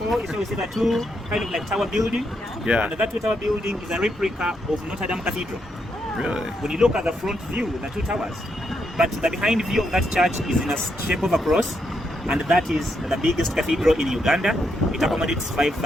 is where you see the 2 kind of like tower building. Yeah. And that 2 tower building is a replica of Notre Dame Cathedral. Really? When you look at the front view, the 2 towers, but the behind view of that church is in a shape of a cross, and that is the biggest cathedral in Uganda. It accommodates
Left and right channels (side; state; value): both; normal; correlation 0.79